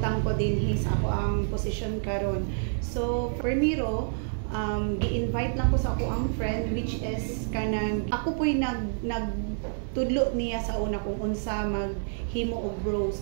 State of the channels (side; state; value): left; silent; digital silence